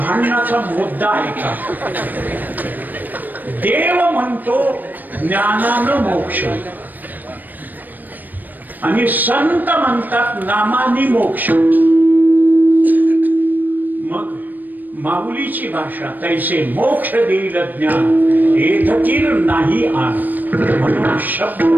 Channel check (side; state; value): left; late; 0.087 ms